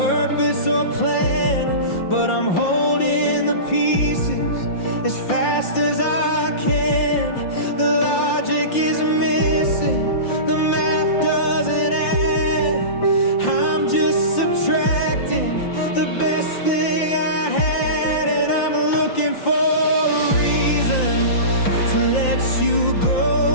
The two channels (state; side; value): late; right; 5.7 ms